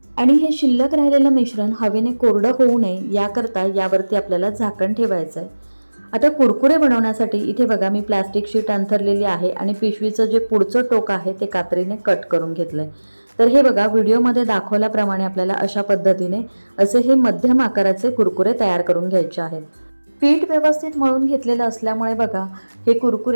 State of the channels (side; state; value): both; inverted; correlation -1.00